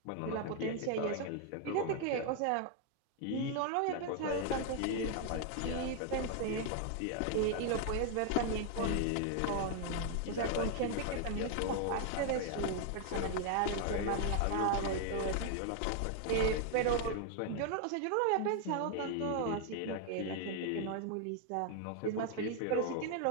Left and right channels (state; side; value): different; both; correlation 0.00